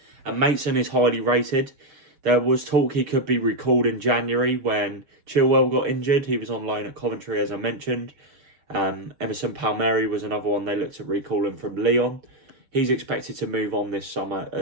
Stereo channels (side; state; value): left; late; 6.8 ms